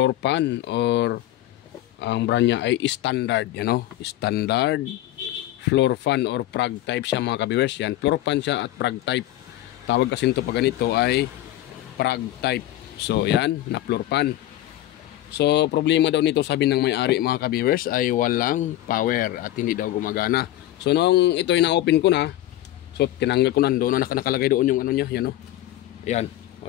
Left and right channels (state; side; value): quieter; right; 14.3 dB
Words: fan, or ang brand niya ay standard, standard floor fan or prag type siya mga ka-viewers. Yan, floor fan siya at prag type. Tawag kasi nito pag ganito ay prag type. So yan, na floor fan. So problema daw nito, sabi ng may-ari mga ka-viewers, ay walang power at hindi daw gumagana. So nung ito ay na-open ko na, so tinanggal ko na, doon na nakalagay doon yung ano niya, yan o. Ayan, o